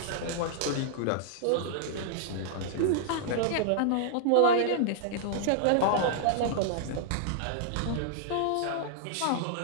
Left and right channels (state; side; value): different; both; correlation -0.01